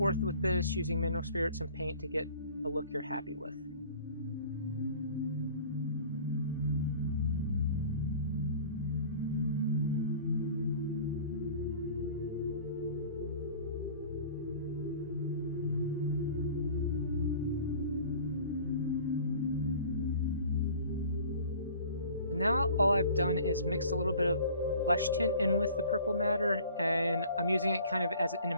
with this using mineral spirits and paint to get a look you're happy with. Now all I've done is mixed a little bit of flesh tint in with the purple matter, and I'm using it kind of as an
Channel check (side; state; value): both; inverted; correlation -0.47